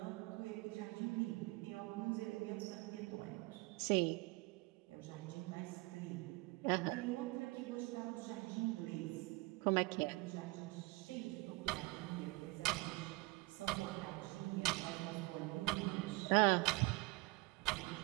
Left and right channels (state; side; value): quieter; left; 24.8 dB